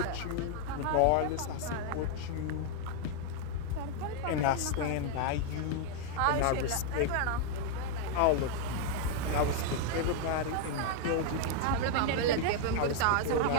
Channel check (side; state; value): both; different; correlation 0.00